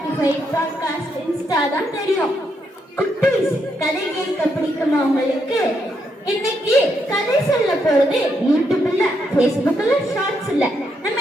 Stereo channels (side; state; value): both; normal; correlation 0.78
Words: பாட்காஸ்ட், இன்ஸ்டா தான் தெரியும். குட்டீஸ், கதை கேட்க பிடிக்குமா உங்களுக்கு? இன்னைக்கு கதை சொல்ல போறது யூடியூப்ல, பேஸ்புக்ல, ஷார்ட்ஸ் இல்ல, நம்ம